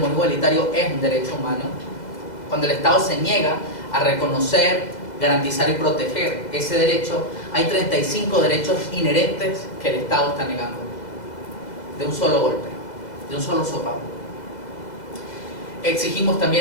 igualitario es un derecho humano. Cuando el Estado se niega a reconocer, garantizar y proteger ese derecho, hay 35 derechos inherentes que el Estado está negando, de un solo golpe, de un solo sopapo. Exigimos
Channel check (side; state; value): right; late; 2.0 ms